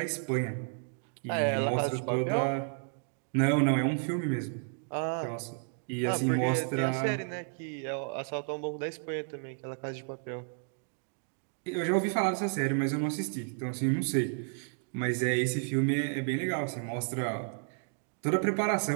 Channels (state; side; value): silent; left; 56 dB below the other